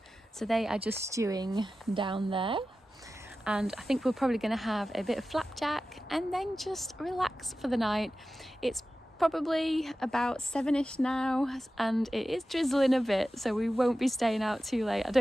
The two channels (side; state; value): both; normal; correlation 0.94